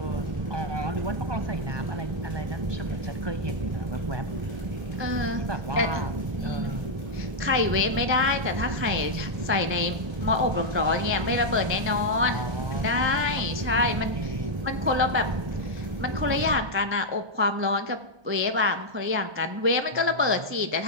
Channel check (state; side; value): late; left; 1.2 ms